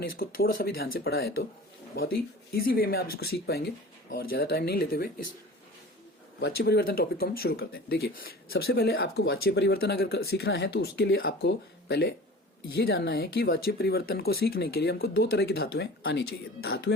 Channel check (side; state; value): both; normal; correlation 0.40